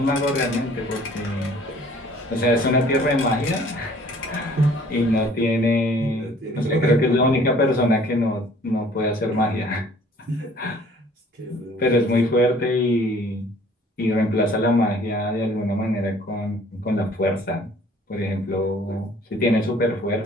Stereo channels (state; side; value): normal; both; correlation 0.54